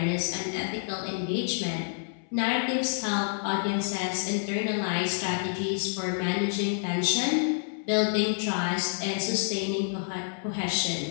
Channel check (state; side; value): silent; right; 59 dB below the other